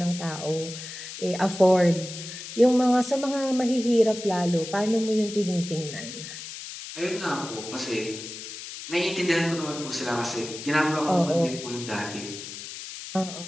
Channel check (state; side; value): noise; left; hiss, 10 dB below the sound